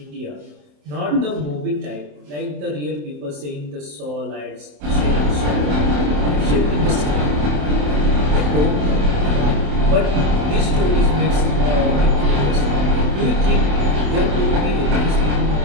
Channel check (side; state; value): left; late; 27 ms